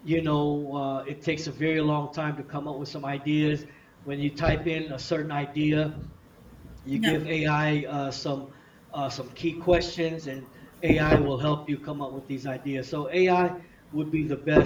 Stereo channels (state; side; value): identical; both; correlation 1.00